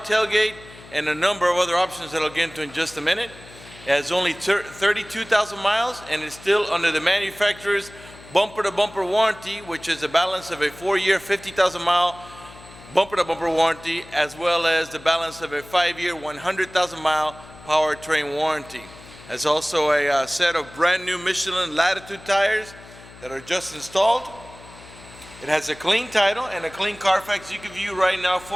and a number of other options that I'll get into in just a minute. It has only 32,000 miles and is still under the manufacturer's bumper-to-bumper warranty, which is a balance of a 4-year, 50,000-mile bumper-to-bumper warranty, as well as the balance of a 5-year, 100,000-mile powertrain warranty. There's also a set of brand new Michelin Latitude tires that are just installed. It has a clean title and a clean Carfax you can view right now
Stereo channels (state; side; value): noise; left; hum, 20 dB below the sound